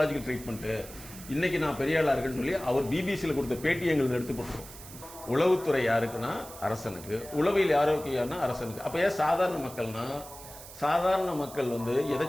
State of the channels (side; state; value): right; noise; hiss, 16 dB below the sound